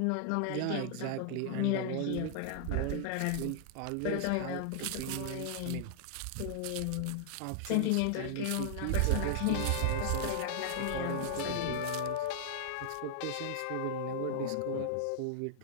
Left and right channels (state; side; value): different; both; correlation -0.01